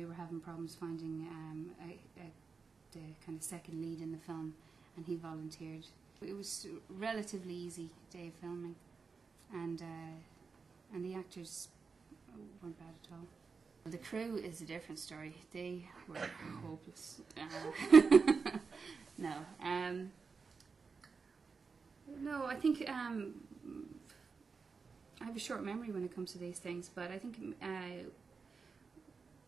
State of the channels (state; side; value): quieter; left; 5.0 dB